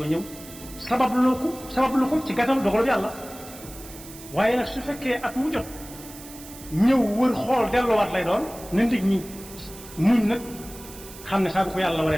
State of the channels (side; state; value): right; noise; hiss, 17 dB below the sound